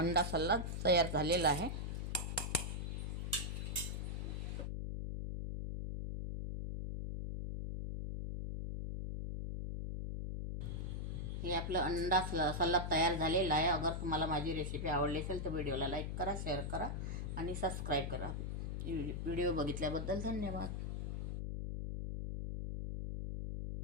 सलाद तयार झालेला आहे। हे आपलं अंडा सलाद तयार झालेला आहे। अगर तुम्हाला माझी रेसिपी आवडली असेल तर व्हिडिओला लाईक करा, शेअर करा आणि सबस्क्राईब करा। व्हिडिओ बघितल्याबद्दल धन्यवाद।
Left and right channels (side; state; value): left; noise; hum, 3 dB below the sound